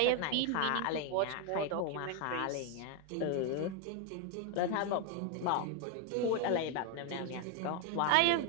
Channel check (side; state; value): both; different; correlation 0.01